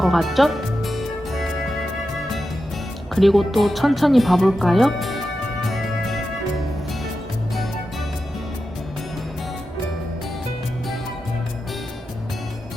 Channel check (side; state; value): both; normal; correlation 0.90